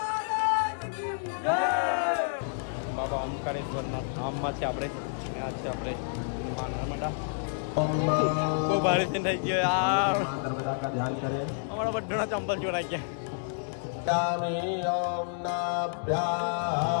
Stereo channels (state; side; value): silent; right; digital silence